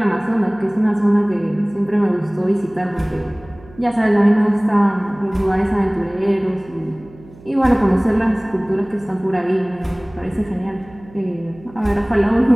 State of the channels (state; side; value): noise; right; hum, 23 dB below the sound